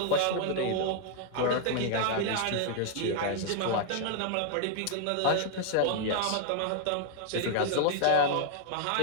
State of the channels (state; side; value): different; both; correlation 0.00